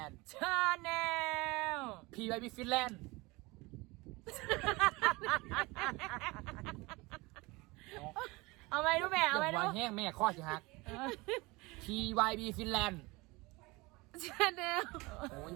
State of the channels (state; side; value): quieter; left; 23.7 dB